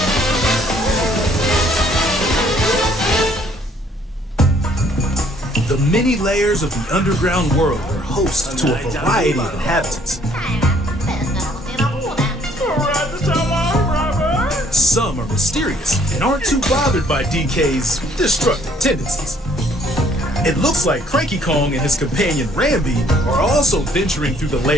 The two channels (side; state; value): both; normal; correlation 0.62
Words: The many layers of the underground world are host to a variety of inhabitants. Some are mysterious and aren't too bothered by DK's destructive tendencies. It looks like Cranky Kong and his companion Rambi are also venturing through the